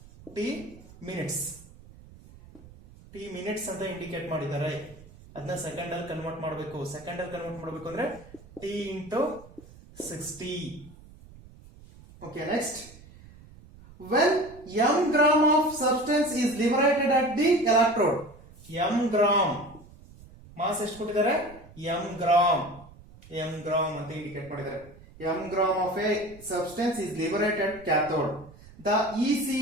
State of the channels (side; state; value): right; noise; rumble, 21 dB below the sound